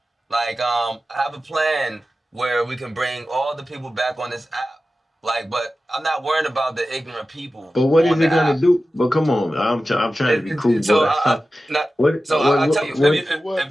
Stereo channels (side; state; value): both; normal; correlation 0.94